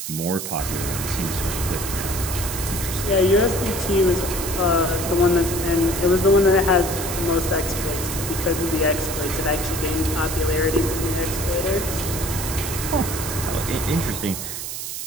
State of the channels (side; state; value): right; noise; hiss, 6 dB below the sound